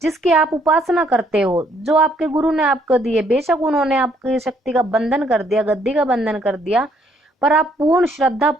जिसकी आप उपासना करते हो, जो आपके गुरु ने आपको दिए। बेशक उन्होंने आपकी शक्ति का बंधन कर दिया, गद्दी का बंधन कर दिया, पर आप पूर्ण श्रद्धा,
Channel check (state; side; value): normal; both; correlation 0.67